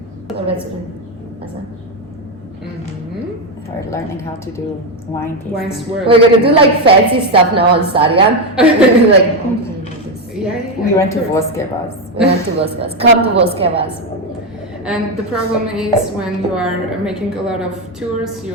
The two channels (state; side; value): normal; both; correlation 0.08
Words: So let's do. We're learning how to do wine tasting. Wine swirl. We're gonna do like fancy stuff now on Saryan. Like, Yeah, We went to Voskevas. we went to Voskevas. Come to Voskevas. And the problem is when you are making a lot of tours,